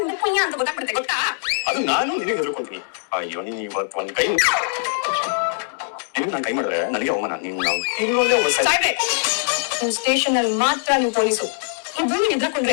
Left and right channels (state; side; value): silent; right; digital silence